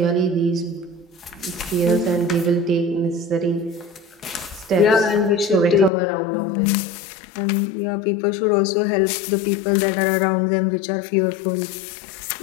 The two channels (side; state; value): right; drops out; at 5.9 s